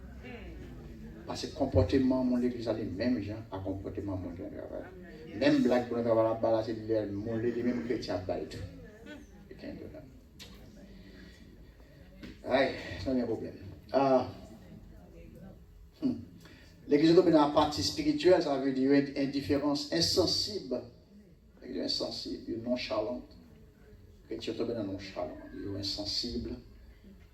Parce que le comportement de l'église a les mêmes gens à comportement de mon travail. Même blague pour nous travailler là-bas, c'est les mêmes chrétiens à tout. Aïe, ça n'est pas un problème. L'église domine la partie spirituelle, ça veut dire une indifférence insensible, insensible, nonchalante. Chrétien tombe dans nonchalant, il est insensible,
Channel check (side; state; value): both; identical; correlation 1.00